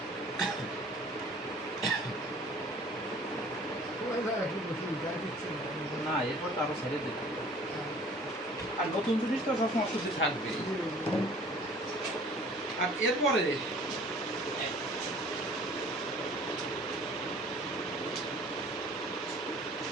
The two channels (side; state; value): both; normal; correlation 0.50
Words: না, এরপর তো আরো ছেড়ে দিতে হবে। আর নতুন জিনিস তো সবসময় অস্বস্তি থাকবে। আর এরপরে